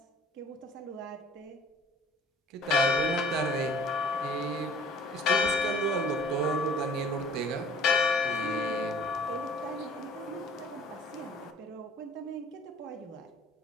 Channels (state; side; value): normal; both; correlation 0.50